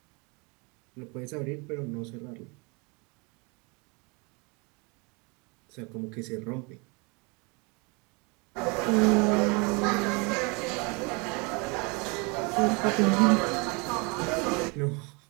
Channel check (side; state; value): left; quieter; 30.1 dB